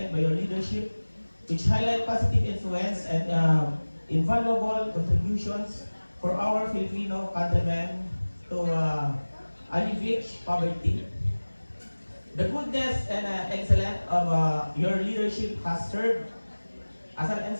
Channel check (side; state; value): both; inverted; correlation -1.00